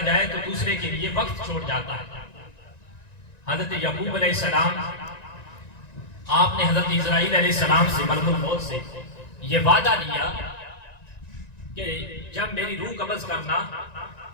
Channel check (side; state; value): right; late; 1.9 ms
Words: تو دوسرے کے لیے وقت چھوڑ جاتا ہے۔ حضرت یعقوب علیہ السلام، آپ نے حضرت اسرائیل علیہ السلام سے، ملک الموت سے یہ وعدہ لیا کہ جب میری روح قبض کرنا